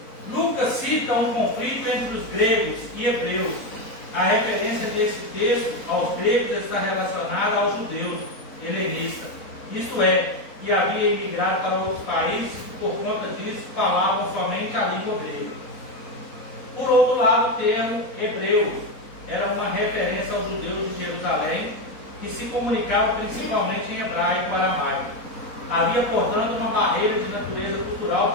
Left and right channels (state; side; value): late; right; 4.1 ms